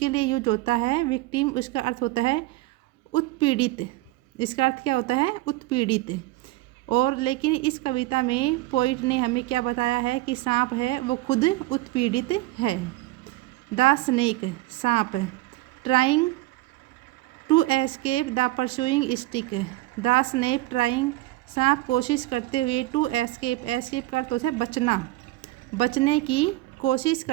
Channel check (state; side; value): quieter; left; 18.4 dB